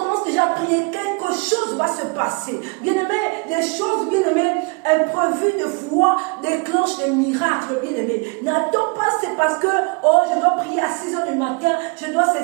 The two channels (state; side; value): quieter; left; 31.0 dB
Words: déjà à prier. Quelque chose va se passer. Bien-aimé, les choses, bien-aimé, imprévues de foi déclenchent des miracles, bien-aimé. N'attends pas, c'est parce que, je dois prier à 6 h du matin, je dois